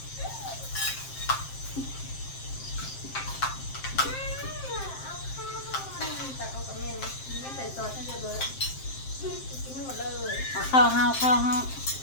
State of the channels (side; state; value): right; late; 7.6 ms